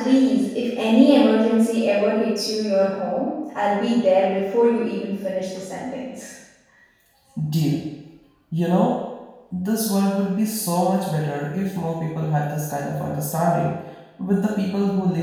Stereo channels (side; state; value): both; identical; correlation 1.00